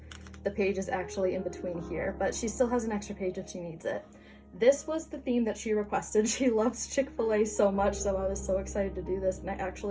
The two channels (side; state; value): both; identical; correlation 1.00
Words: The page is actually in between here, but she still has an extra page if she needs it. This was the theme that she requested. She loves Chick-fil-A so much, so I was so excited to do this, and I